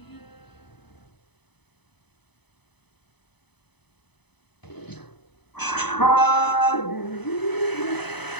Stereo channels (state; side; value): late; right; 0.98 ms